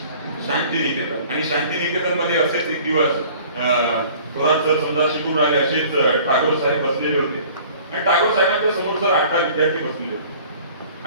शांतिनिकेतन. आणि शांतिनिकेतन मध्ये असेच एक दिवस थोरात सर समजा शिकून राहिले, असेच टागोर साहेब बसलेले होते आणि टागोर साहेबांच्या समोर सर 8 विद्यार्थी बसलेले होते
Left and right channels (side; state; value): both; inverted; correlation -0.49